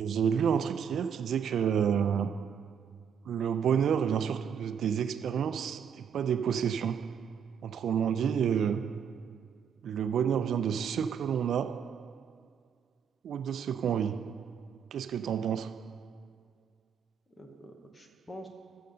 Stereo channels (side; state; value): left; quieter; 7.6 dB